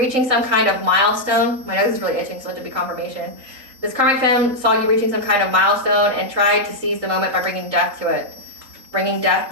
some kind of milestone. My nose is really itching, so let it be confirmation. This karmic femme saw you reaching some kind of milestone and tried to seize the moment by bringing death to it. Bringing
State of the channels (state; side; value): late; left; 3.9 ms